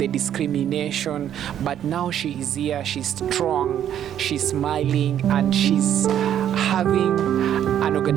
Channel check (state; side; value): quieter; left; 10.3 dB